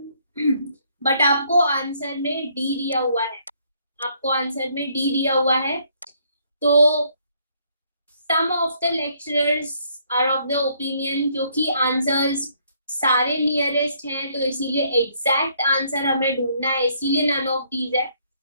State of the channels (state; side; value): inverted; both; correlation -0.67